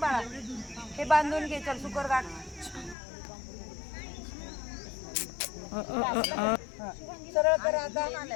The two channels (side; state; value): right; drops out; at 3.0 s